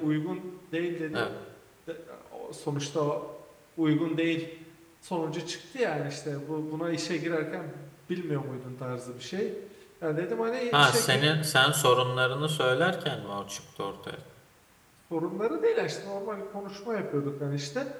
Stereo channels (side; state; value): both; identical; correlation 1.00